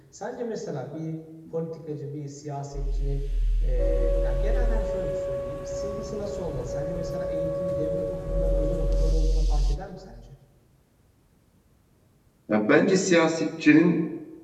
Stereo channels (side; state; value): both; identical; correlation 1.00